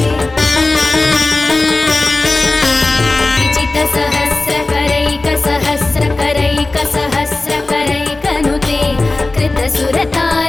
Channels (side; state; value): right; quieter; 3.1 dB